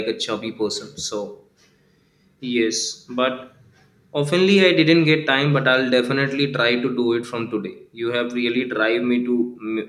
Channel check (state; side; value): identical; both; correlation 1.00